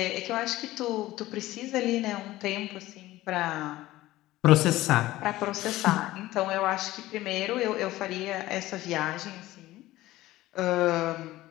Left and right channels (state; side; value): quieter; right; 16.7 dB